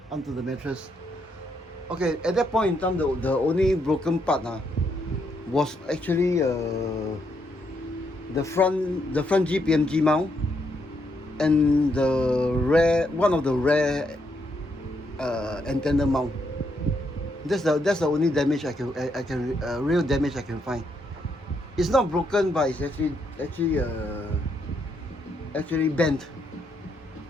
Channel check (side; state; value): both; normal; correlation 0.77